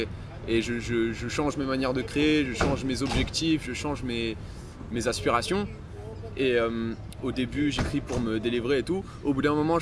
je change mes manières de créer, je change mes objectifs, je change mes aspirations. Et au début, j'écris pour me délivrer et tout. Au bout d'un moment,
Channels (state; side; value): identical; both; correlation 1.00